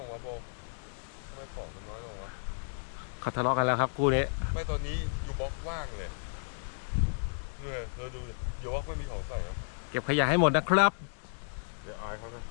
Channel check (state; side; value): silent; right; digital silence